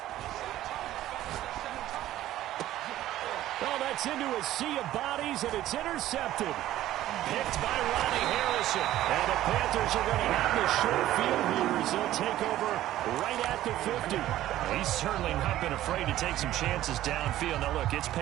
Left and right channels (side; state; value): left; quieter; 13.9 dB